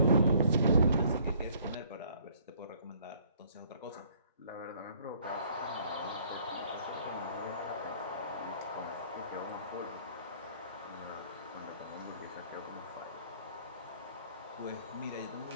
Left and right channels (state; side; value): inverted; both; correlation -0.60